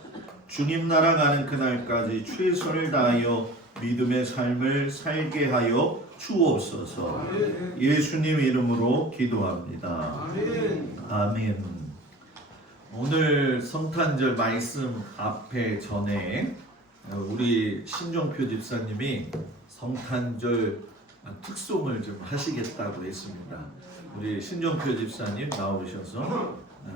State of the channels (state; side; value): normal; both; correlation 0.41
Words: 주님 나라 가는 그날까지 최선을 다하여 믿음의 삶을 살게 하여 주옵소서. 예수님 이름으로 기도합니다. 아멘. 오늘 성탄절 말씀 앞에 전에 우리 신종표 집사님이 성탄절 특송을 좀 하시겠다고 했습니다. 우리 신종표 집사님 나오셔서